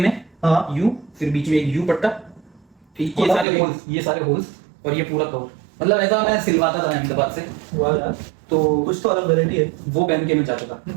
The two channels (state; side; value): drops out; left; at 3.5 s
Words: हाँ। यू, फिर बीच में एक यू पट्टा, ठीक, ये और सारे ये- होल्स, ये सारे होल्स, और ये पूरा कवर। मतलब ऐसा मैं सिलवाता था अहमदाबाद से। वाह यार, तो कुछ तो अलग वैरायटी है। वो पहन के मैं जाता था।